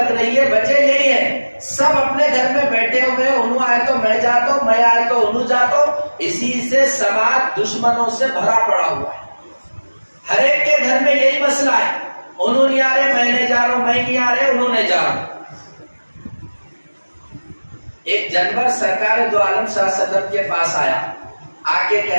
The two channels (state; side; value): inverted; both; correlation -1.00